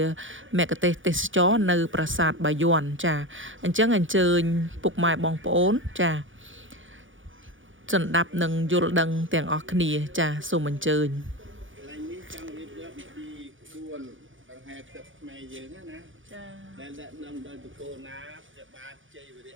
មគ្គុទ្ទេសក៍ទេសចរនៅប្រាសាទបាយ័នចាអញ្ចឹងអញ្ជើញពុកម៉ែបងប្អូនចាសន្តាប់នឹងយល់ដឹងទាំងអស់គ្នាចាសូមអញ្ជើញឡើងនេះចង់រៀបរាប់ពីក្បួនដង្ហែទឹកខ្មែរយើងណាចាដែលដឹកនាំដោយបកគោណាព្រះបាទជ័យវរៈ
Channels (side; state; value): left; late; 0.57 ms